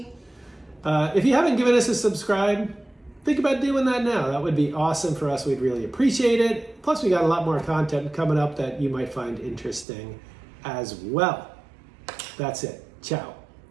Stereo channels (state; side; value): drops out; left; at 9.9 s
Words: If you haven't given us a subscribe, think about doing that now. That would be awesome for us. We'd really appreciate it. Plus, we got a lot more content coming up that you might find interesting as well. That's it. Ciao.